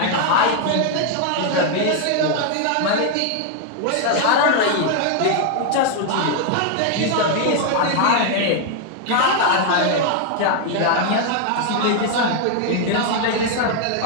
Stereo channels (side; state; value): both; different; correlation 0.00